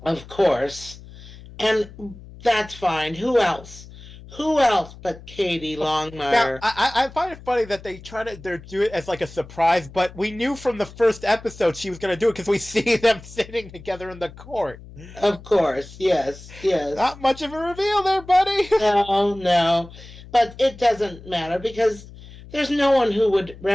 Of course. And that's fine. Who else? Who else but Katie Now, Longmire? I find it funny that they do it as like a surprise, but we knew from the first episode she was going to do it because we see them sitting together in the court. Of course. Yes, yes. Not much of a reveal there, buddy. No, no. But it doesn't matter because there's no one who would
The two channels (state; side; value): noise; left; hum, 18 dB below the sound